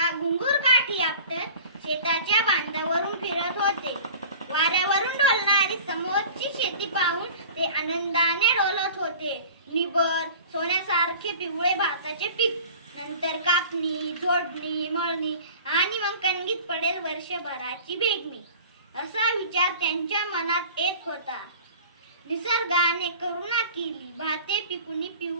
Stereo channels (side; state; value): both; inverted; correlation -0.41